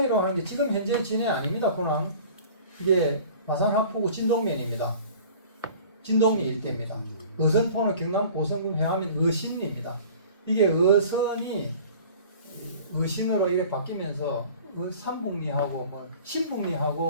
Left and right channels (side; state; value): both; inverted; correlation -0.45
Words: 하는 게 지금 현재 진해 아닙니다. 군항 이게 마산합포구 진동면입니다. 진동리 일대입니다. 어선포는 경남 고성군 회암인 어신리입니다. 이게 어선이 어신으로 이게 바뀌면서 삼북리하고 뭐